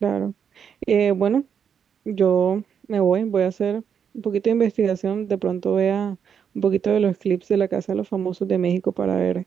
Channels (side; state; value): left; quieter; 7.5 dB